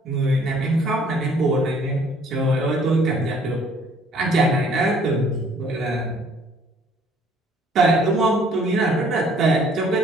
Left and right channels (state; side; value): normal; both; correlation 0.59